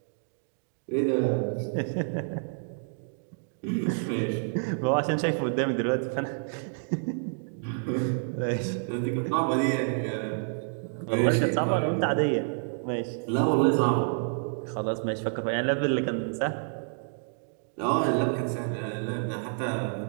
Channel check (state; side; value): silent; left; digital silence